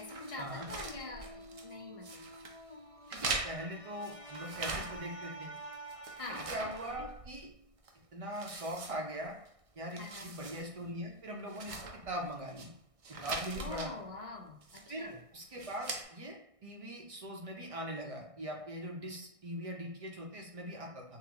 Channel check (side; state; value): left; late; 1.6 ms